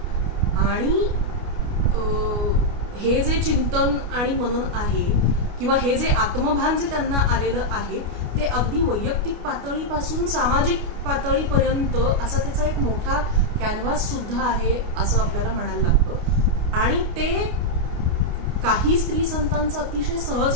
आणि हे जे चिंतन आणि मनन आहे किंवा हे जे आत्मभान जे त्यांना आलेलं आहे ते अगदी वैयक्तिक पातळीपासून सामाजिक पातळीपर्यंत असा त्याचा एक मोठा कॅनव्हास सुद्धा आहे असं आपल्याला म्हणायला लागतं. आणि ते काही स्त्री संतांचं अतिशय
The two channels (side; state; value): left; late; 29 ms